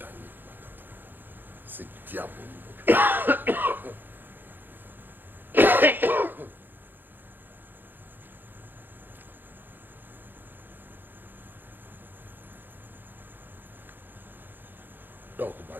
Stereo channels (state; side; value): late; left; 0.092 ms